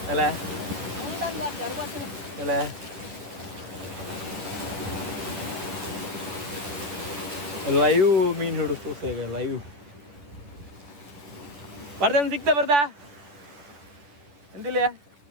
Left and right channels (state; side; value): late; left; 11 ms